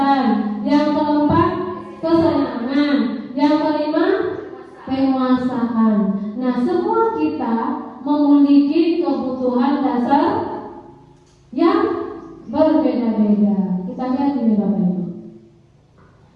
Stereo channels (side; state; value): both; identical; correlation 1.00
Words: Yang keempat kesenangan. Yang kelima penguasaan. Nah, semua kita memiliki kebutuhan dasar yang berbeda-beda. berbeda. Kita lihat ini Bapak Ibu.